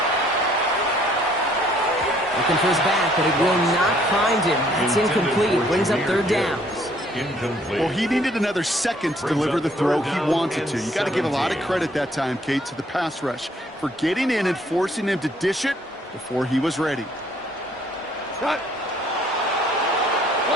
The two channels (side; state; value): both; normal; correlation 0.63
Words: Looking for his back, but it will not find him. It's incomplete. Brings up 3rd down. Incomplete. Well, he needed another second to deliver the throw he wanted to. You got to give a lot of credit that time, Kate, to the pass rush for getting in and forcing him to dish it before he was ready. Cut.